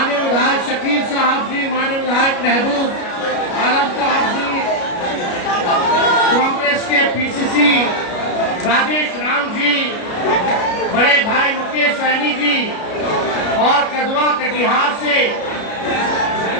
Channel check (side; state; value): right; late; 33 ms